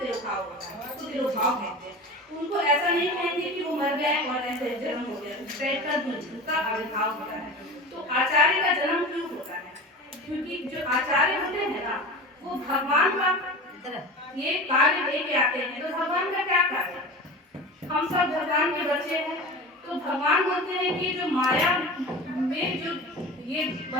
होता है, उसको तिरोभाव कहते हैं। उनको ऐसा नहीं कहेंगे कि वो मर गए और ऐसे जन्म हो गया, उनका आविर्भाव होता है। तो आचार्य का जन्म क्यों होता है? क्योंकि जो आचार्य होते हैं ना वो भगवान का ये कार्य लेके आते हैं। तो भगवान का क्या कार्य है? हम सब भगवान के बच्चे हैं, तो भगवान बोलते हैं कि जो माया में जो ये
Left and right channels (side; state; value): both; normal; correlation 0.32